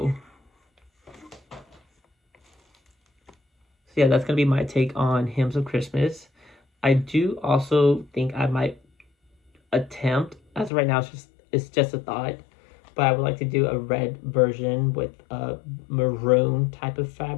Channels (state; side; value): drops out; right; at 10.7 s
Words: So yeah, that's going to be my take on Hymns of Christmas. I do also think I might attempt, as of right now it's just a thought, but I would like to do a red version with a maroon type of